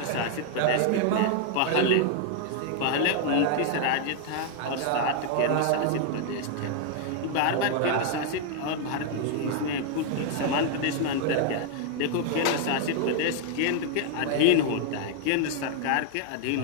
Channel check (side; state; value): both; different; correlation 0.00